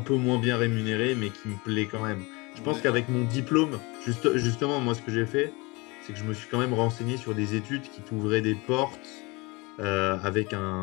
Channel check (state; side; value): quieter; right; 25.9 dB